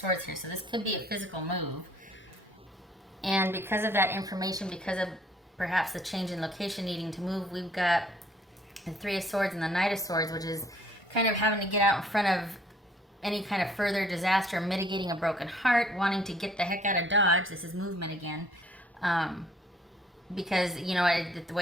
here, so this could be a physical move. And because of that information, because of perhaps the change in location needing to move, we've got the Three of Swords and the Knight of Swords, which is kind of having to get out in front of any kind of further disaster, mitigating a broken heart, wanting to get the heck out of Dodge. This is movement again. Because, you know, the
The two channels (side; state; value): both; normal; correlation 0.60